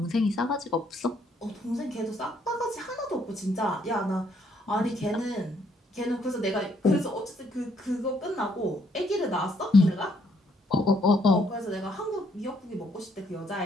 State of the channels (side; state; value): both; normal; correlation 0.70